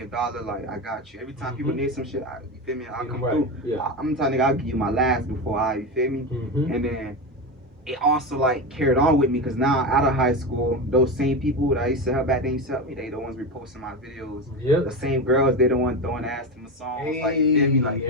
$1, like I got you. Every time people need some shit, you feel me? I'll come through. Yeah. I'm the type nigga, I'll give you my last before you feel me? And then it also like carried on with me because now out of high school, those same people that I used to help back then used to help me. They the ones reposting my videos. The same girls, they the ones throwing ass to my songs. Hey, like you feel me? Like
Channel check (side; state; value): both; normal; correlation 0.19